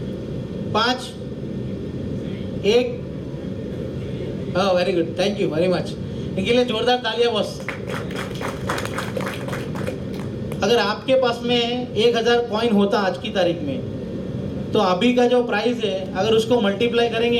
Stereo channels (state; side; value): identical; both; correlation 1.00